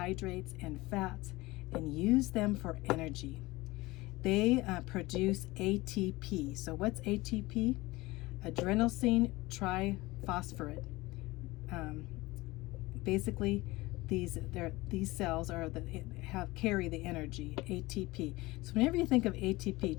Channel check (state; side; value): quieter; right; 20.8 dB